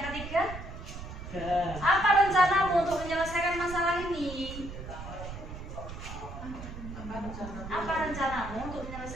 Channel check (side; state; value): right; noise; rumble, 10 dB below the sound